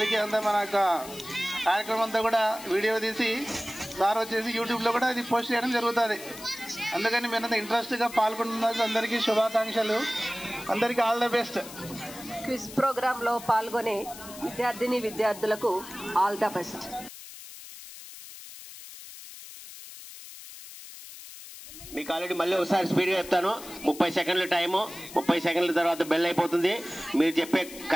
అంతా మన యొక్క కార్యక్రమం అంతా కూడా వీడియో తీసి సార్ వచ్చేసి యూట్యూబ్లో కూడా ఇది పోస్ట్ చేయడం జరుగుతుంది. అందుకని మీరంతా ఇంట్రెస్ట్గా పాల్గొంటున్నారు. అందరికీ శుభాకాంక్షలు. అందరికీ ఆల్ ద బెస్ట్. క్విజ్ ప్రోగ్రాంలో పాల్గొనే విద్యార్థులకు ఆల్ ద బెస్ట్. మీకు ఆల్రెడీ మళ్ళీ ఒకసారి స్పీడ్గా చెప్తాను. 30 సెకండ్ల టైము. 30 సెకండ్ల తర్వాత బెల్ అయిపోతుంది. మీరు చెప్పే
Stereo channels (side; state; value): left; noise; hiss, 15 dB below the sound